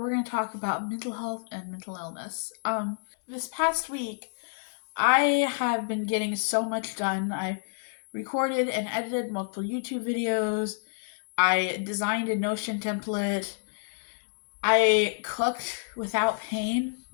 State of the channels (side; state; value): right; silent; 59 dB below the other